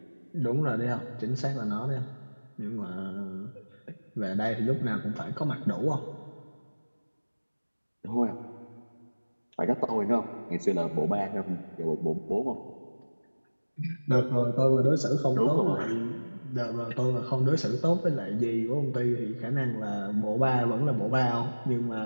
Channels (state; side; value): inverted; both; correlation -1.00